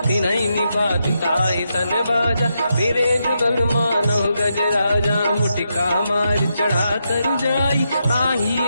तिनहि निपात ताहि सन बाजा फिरे जुगल मानव गज राजा मुटिका मार चढ़ा तर जाई पाही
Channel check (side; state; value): both; inverted; correlation -0.83